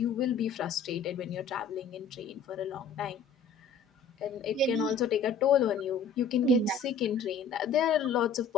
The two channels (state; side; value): quieter; right; 5.3 dB